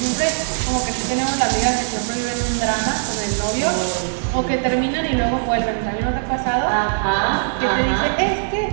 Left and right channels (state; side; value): silent; left; digital silence